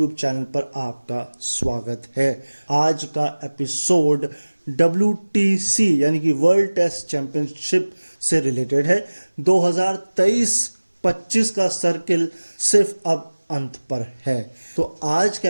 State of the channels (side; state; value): both; inverted; correlation -1.00